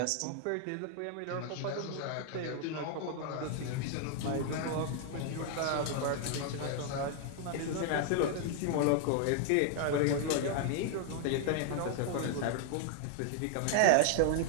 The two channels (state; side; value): different; both; correlation 0.00